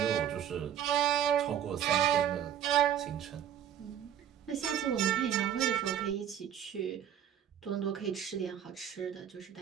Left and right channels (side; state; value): left; quieter; 9.7 dB